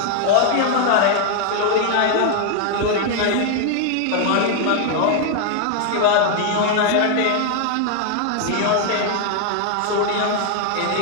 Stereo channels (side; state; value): both; different; correlation 0.00